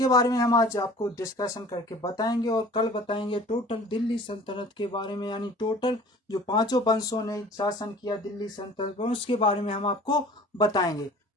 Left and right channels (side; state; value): both; normal; correlation 0.46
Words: बारे में हम आज आपको डिस्कशन करके बताएंगे और कल बताएंगे टोटल दिल्ली सल्तनत के बारे में, यानी टोटल जो पांचों वंशों ने शासन किया दिल्ली सल्तनत पर उसके बारे में हम आपको बताएंगे।